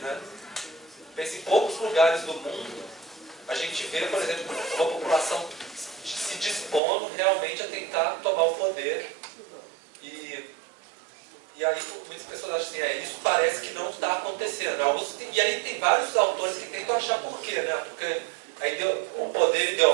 Pensa em poucos lugares do mundo, a gente vê, por exemplo, uma população se dispondo realmente a tentar tomar o poder. E aí muitas pessoas acham assim, isso parece que não está acontecendo. E aí tem vários autores que tentam achar por quê, né? Porque o poder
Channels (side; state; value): left; drops out; at 6.8 s